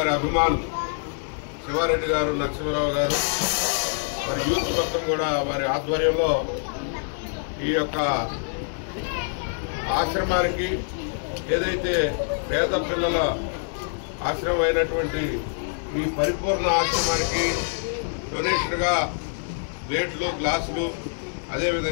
అభిమానులు శివారెడ్డి గారు, నరసింహరావు గారు, మరి యూత్ మొత్తం కూడా వారి ఆధ్వర్యంలో ఈ యొక్క ఆశ్రమానికి, ఏదైతే పేద పిల్లల ఆశ్రమం అయినటువంటి ఈ పరిపూర్ణ ఆశ్రమానికి డొనేషన్గా ప్లేట్లు, గ్లాసులు,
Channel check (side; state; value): right; silent; digital silence